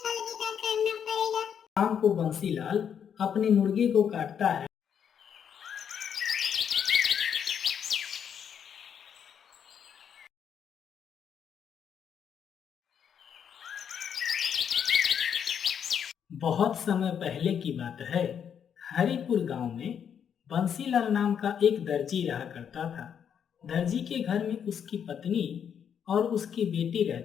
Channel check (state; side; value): quieter; right; 8.1 dB